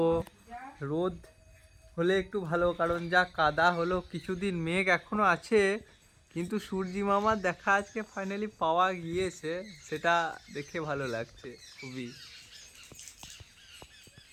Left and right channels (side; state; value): both; identical; correlation 1.00